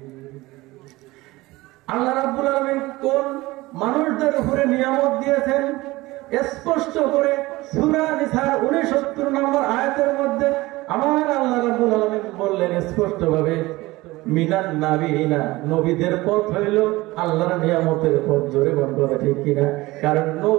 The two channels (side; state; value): left; quieter; 20.0 dB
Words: আল্লাহ রাব্বুল আলামিন কোন মানুষদের উপরে নিয়ামত দিয়েছেন স্পষ্ট করে সূরা নিসার 69 নম্বর আয়াতের মধ্যে আমার আল্লাহ রাব্বুল আলামিন বললেন স্পষ্টভাবে, মিনান নাবিয়িনা, নবীদের পথ হইল আল্লাহর নিয়ামতের পথ। জোরে বল, কথা ঠিক কিনা? কারণ